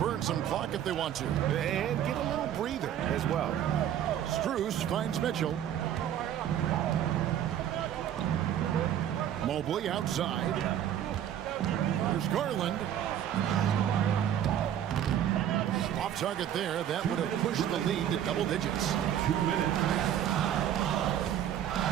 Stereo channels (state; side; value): quieter; left; 10.5 dB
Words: some clock if they want to. And get a little breather as well. Strus finds Mitchell. Mobley outside. There's Garland. Off target there. That would have pushed the lead to double digits. 2 minutes.